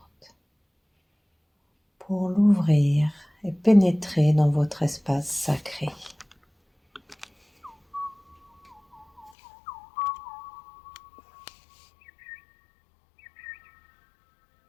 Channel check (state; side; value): drops out; right; at 9.3 s